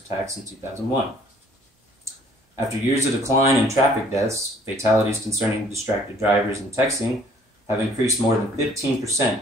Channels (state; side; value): normal; both; correlation 0.58